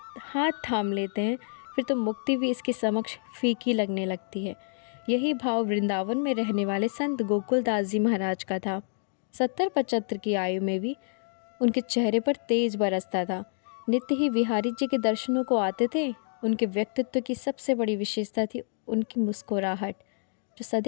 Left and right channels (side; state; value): right; silent; digital silence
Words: हाथ थाम लेते हैं फिर तो मुक्ति भी इसके समक्ष फीकी लगने लगती है। यही भाव वृंदावन में रहने वाले संत गोकुलदास जी महाराज का था। 70-75 की आयु में भी उनके चेहरे पर तेज बरसता था। नित्य ही बिहारी जी के दर्शनों को आते थे। उनके व्यक्तित्व की सबसे बड़ी विशेषता थी उनकी मुस्कुराहट, जो